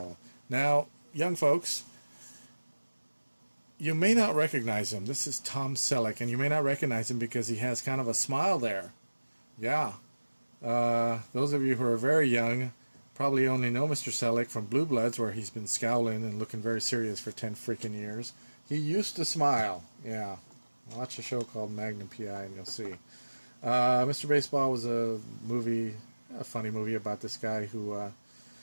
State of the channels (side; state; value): both; inverted; correlation -1.00